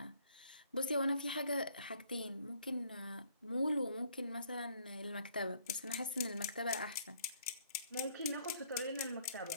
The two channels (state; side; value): inverted; both; correlation -0.64